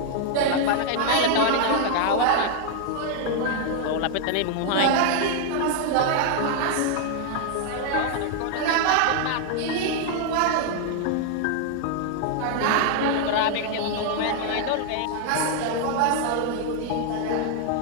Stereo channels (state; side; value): different; both; correlation 0.00